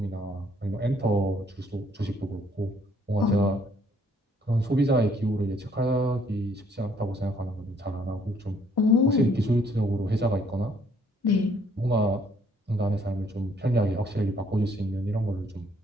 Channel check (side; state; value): both; normal; correlation 0.65